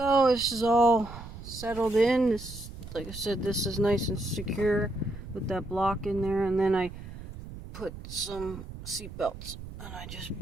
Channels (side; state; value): right; noise; rumble, 12 dB below the sound